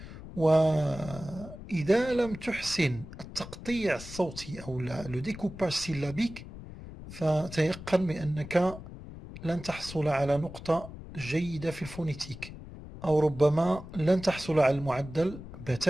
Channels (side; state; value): left; noise; rumble, 13 dB below the sound